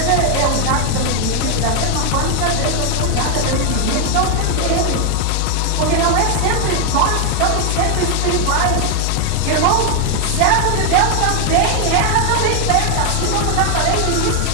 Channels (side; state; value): both; different; correlation 0.00